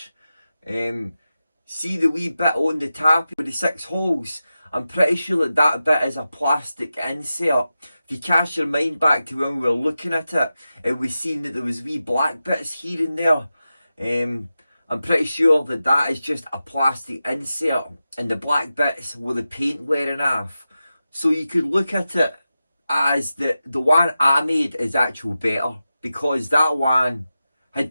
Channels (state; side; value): inverted; both; correlation -0.92